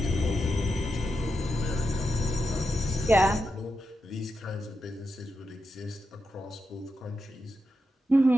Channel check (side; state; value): both; normal; correlation 0.87